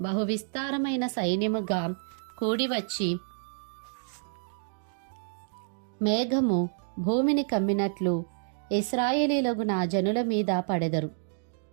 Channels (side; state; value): left; silent; digital silence